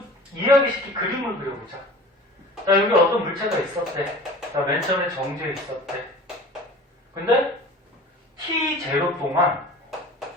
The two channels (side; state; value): both; normal; correlation 0.41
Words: 이해하기 쉽게 그림을 그려보자. 자, 여기 어떤 물체가 있었대. 자, 맨 처음에 정지에 있었대. 근데 t0 동안,